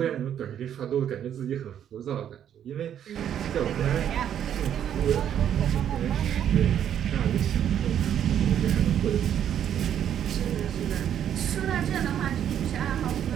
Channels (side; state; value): left; quieter; 9.7 dB